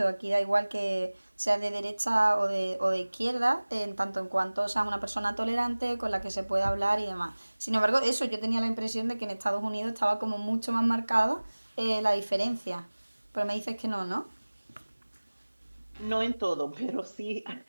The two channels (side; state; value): both; inverted; correlation -1.00